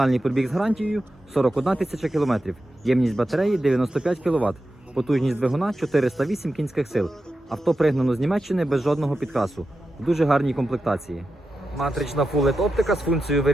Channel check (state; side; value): normal; both; correlation 0.90